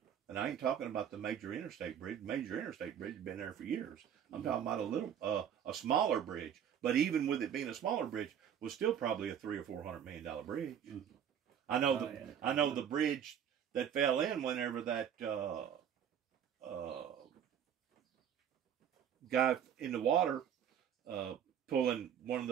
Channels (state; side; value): quieter; left; 8.9 dB